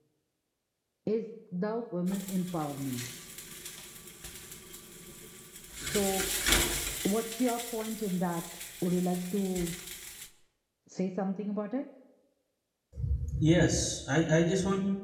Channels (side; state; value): both; identical; correlation 1.00